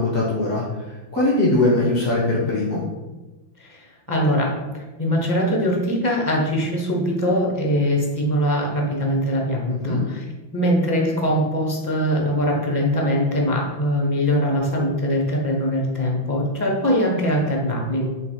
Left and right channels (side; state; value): left; late; 5.9 ms